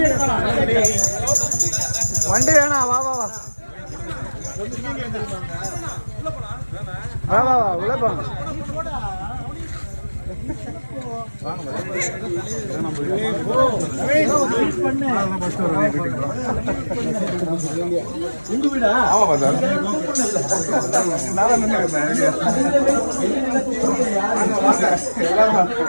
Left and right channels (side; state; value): both; inverted; correlation -1.00